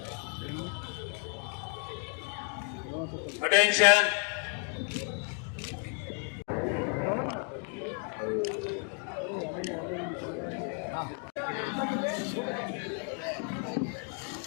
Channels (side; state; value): right; quieter; 39.3 dB